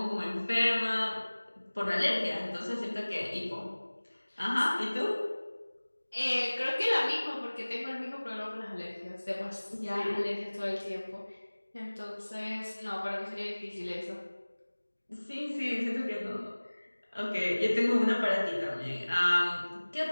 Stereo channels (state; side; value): inverted; both; correlation -1.00